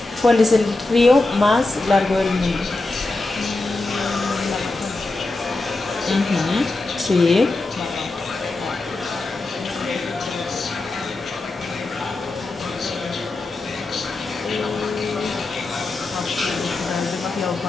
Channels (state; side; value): quieter; right; 3.2 dB